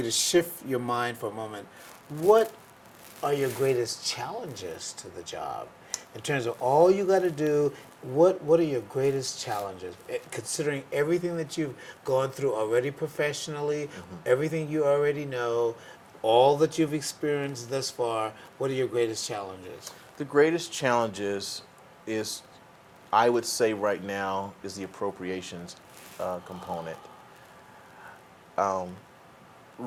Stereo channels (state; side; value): identical; both; correlation 1.00